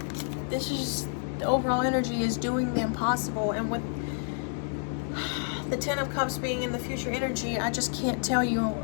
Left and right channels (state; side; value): silent; right; 58 dB below the other